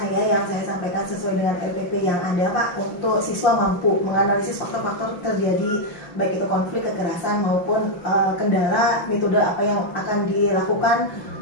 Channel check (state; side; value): late; right; 5.8 ms